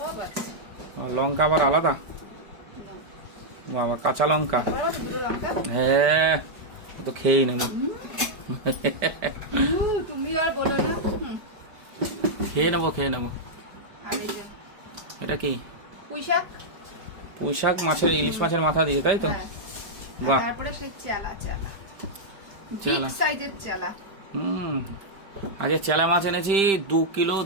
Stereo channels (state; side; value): late; left; 5.0 ms